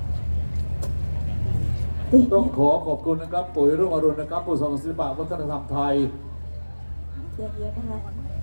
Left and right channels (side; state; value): both; inverted; correlation -1.00